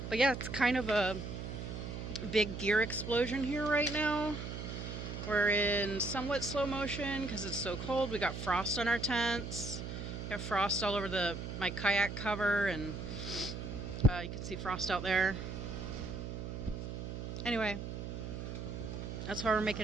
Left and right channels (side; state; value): right; noise; hum, 6 dB below the sound